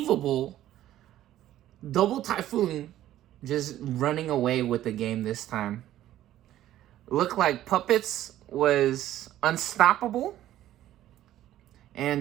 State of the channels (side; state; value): left; quieter; 13.2 dB